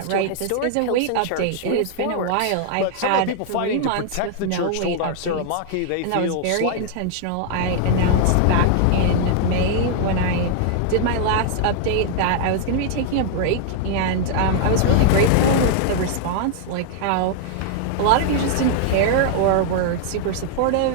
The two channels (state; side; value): different; both; correlation 0.00